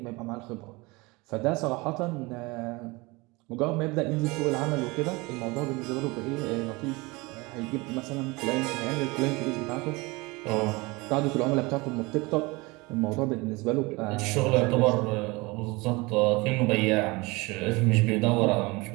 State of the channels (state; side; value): quieter; left; 24.4 dB